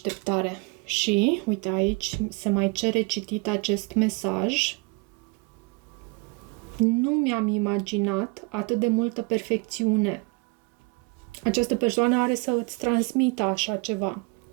Și, uite, aici se mai cere citit acest mesaj. Nu mi-am imaginat atât de multă perfecțiune. Această persoană are să îți transmită așa ceva.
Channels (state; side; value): quieter; left; 27.6 dB